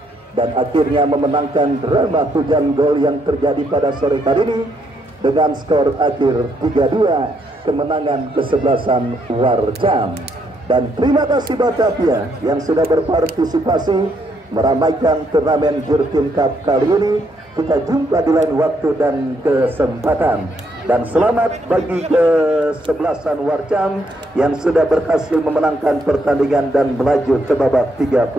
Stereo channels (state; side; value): normal; both; correlation 0.74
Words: dan akhirnya memenangkan drama hujan gol yang terjadi pada sore hari ini dengan skor akhir 3-2, kemenangan kesebelasan Warcam. Dan terima kasih Batavia yang sudah berpartisipasi meramaikan turnamen Jurtin Cup kali ini. Kita jumpa di lain waktu dan kesempatan. Dan selamat bagi kesebelasan Warcam yang sudah berhasil memenangkan pertandingan dan melaju ke babak